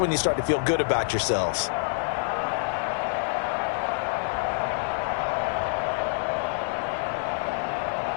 you start to feel good about yourselves.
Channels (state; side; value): silent; right; 60 dB below the other